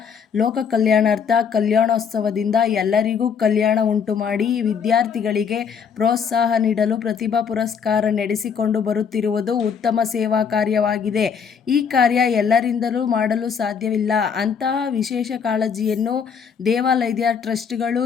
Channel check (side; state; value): right; quieter; 6.7 dB